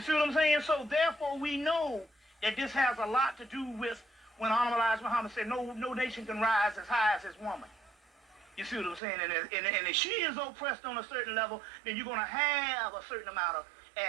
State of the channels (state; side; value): drops out; left; at 9.0 s